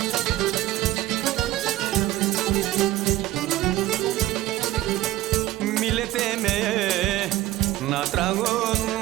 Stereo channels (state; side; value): quieter; left; 15.4 dB